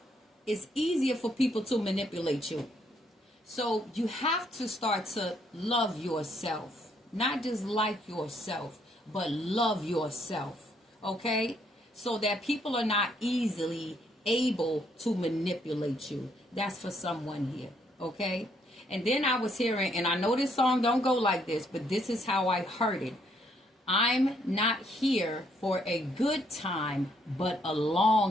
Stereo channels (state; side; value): normal; both; correlation 0.71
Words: it's easier for people to manipulate you. So you have to start to love yourself, not just like yourself, but love yourself, okay? So that people are not easily able to manipulate you. That's for someone here, okay? And then I was hearing, and I know this song don't go like this, but this is how I heard it. I'm not here for a good time, but a